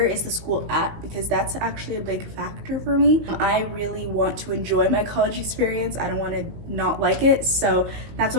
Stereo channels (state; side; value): late; left; 19 ms